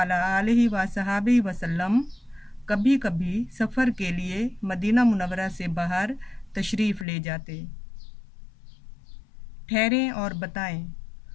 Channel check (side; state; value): right; drops out; at 7.1 s